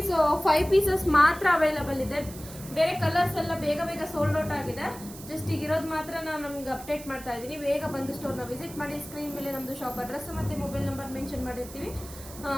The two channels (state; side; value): noise; right; hiss, 16 dB below the sound